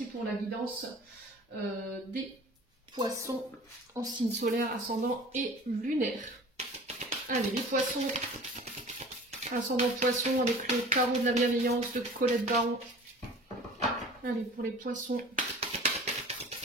pour la guidance des poissons en signe solaire, ascendant et lunaire. Allez, les poissons, ascendant poisson avec le tarot de la bienveillance de Colette Baron. Allez, pour les poissons.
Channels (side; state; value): both; normal; correlation 0.43